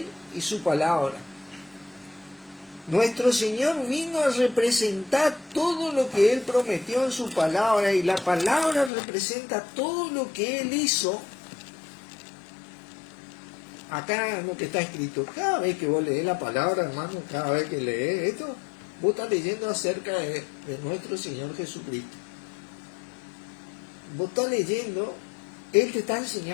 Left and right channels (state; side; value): drops out; right; at 8.9 s